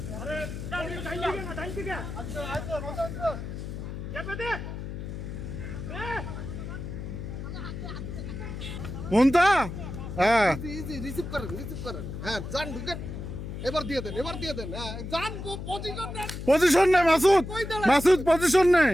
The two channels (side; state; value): left; noise; hum, 7 dB below the sound